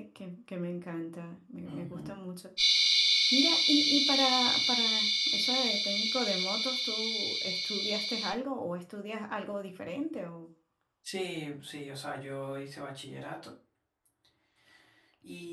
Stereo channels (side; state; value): both; identical; correlation 1.00